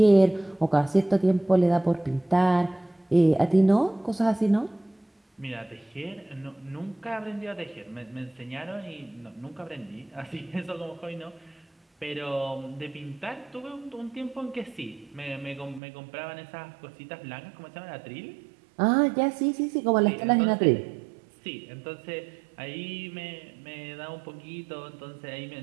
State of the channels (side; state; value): left; drops out; at 15.8 s